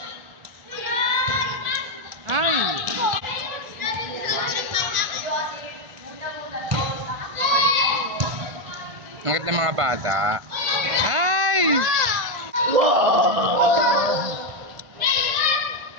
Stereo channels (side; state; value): left; late; 1.4 ms